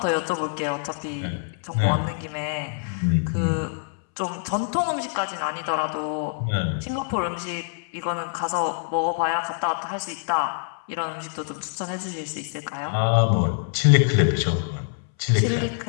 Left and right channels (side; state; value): right; silent; 62 dB below the other